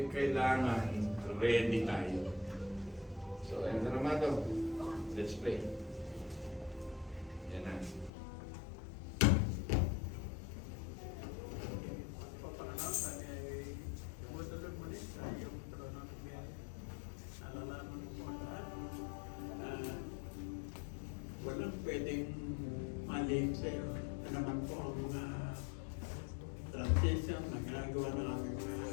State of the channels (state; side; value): drops out; right; at 8.1 s